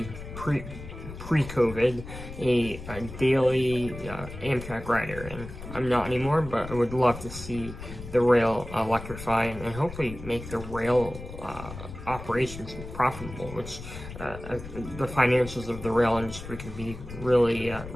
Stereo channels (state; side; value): noise; left; rumble, 12 dB below the sound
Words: pre-COVID, a daily Amtrak rider, and I'm not anymore, but I would love to see the rail electrify and hopefully make the rail operations profitable, which the financials of the rail industry can be really